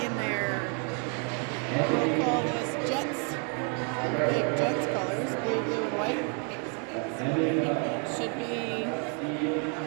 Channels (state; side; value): quieter; left; 39.3 dB